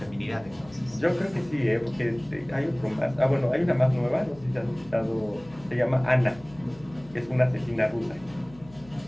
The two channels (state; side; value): noise; left; hum, 22 dB below the sound